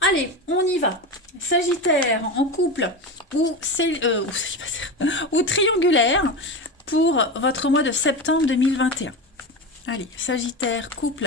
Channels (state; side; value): normal; both; correlation 0.22